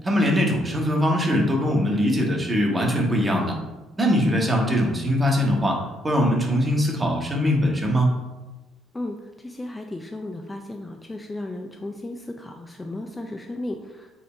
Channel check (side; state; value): both; normal; correlation 0.74